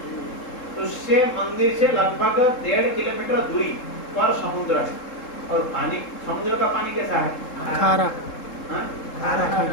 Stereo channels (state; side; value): late; right; 3.7 ms